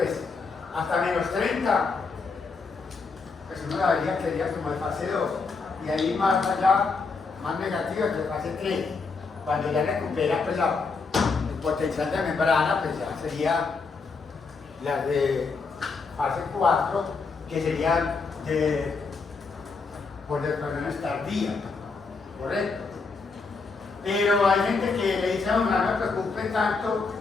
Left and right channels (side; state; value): right; quieter; 4.5 dB